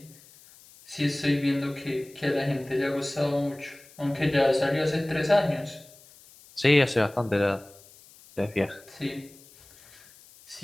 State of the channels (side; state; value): left; noise; hiss, 24 dB below the sound